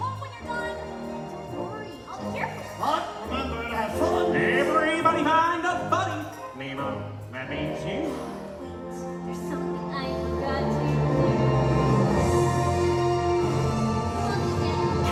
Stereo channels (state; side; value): identical; both; correlation 1.00